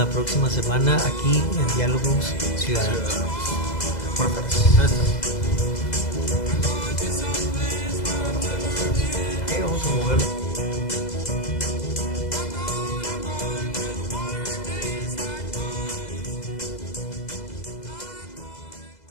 próxima semana aquí en Diálogos Ciudadanos. Buenas tardes.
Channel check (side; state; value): right; late; 2.0 ms